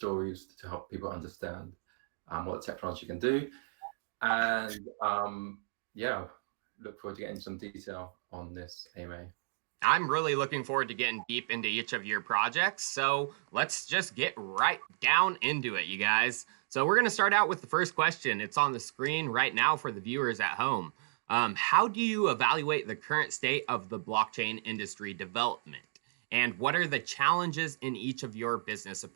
to help people understand what the technology can do. And yeah, look forward to getting some detail on this AMA. I'm really looking forward to getting deep into each of your projects. So let's just get right down into it, you guys. So we're going to start out with the first question. It's on the screen right now for the viewers at home. How do you evaluate the current state of the blockchain industry development? And what are the challenges in each of your business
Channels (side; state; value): left; silent; digital silence